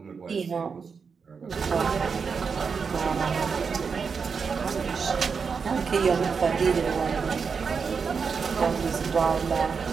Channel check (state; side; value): quieter; left; 5.6 dB